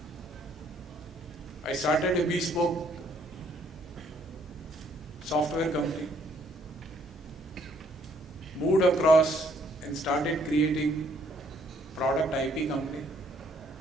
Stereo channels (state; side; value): normal; both; correlation 0.66